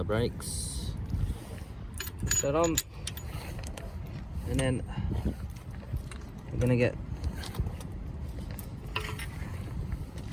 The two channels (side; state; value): both; identical; correlation 1.00